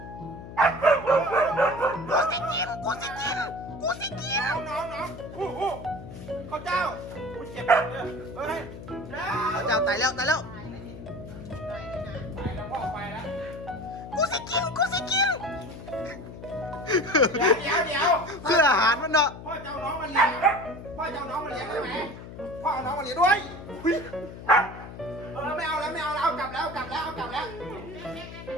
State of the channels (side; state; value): left; noise; hum, 13 dB below the sound